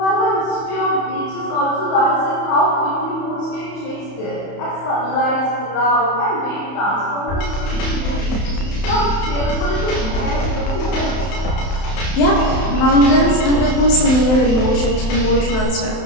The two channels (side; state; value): right; late; 31 ms